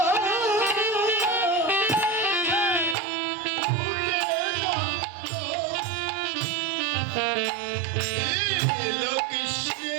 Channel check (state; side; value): drops out; left; at 3.0 s